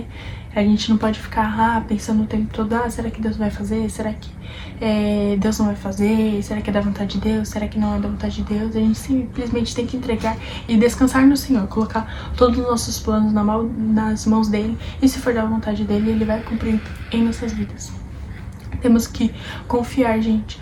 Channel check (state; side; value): identical; both; correlation 1.00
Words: A gente não pode ficar pensando o tempo todo, será que Deus vai fazer? Será que Deus não vai fazer? Será que é da vontade de Deus? Será que não é da vontade de Deus? A gente simplesmente tem que entregar e descansar no Senhor, colocar todos os nossos planos nas mãos dele, e se for da vontade dele, Ele vai cumprir em nossas vidas. Temos que confiar, gente.